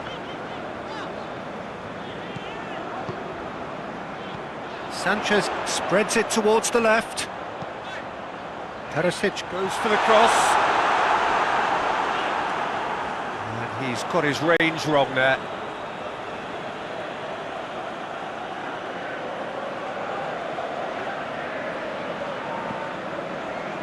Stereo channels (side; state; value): both; identical; correlation 1.00